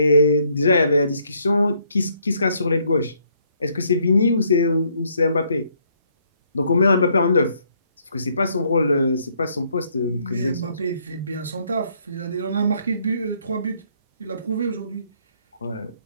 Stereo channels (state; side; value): inverted; both; correlation -0.68